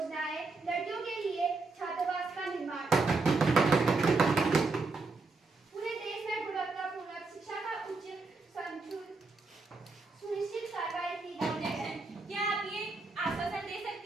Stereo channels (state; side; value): quieter; left; 3.8 dB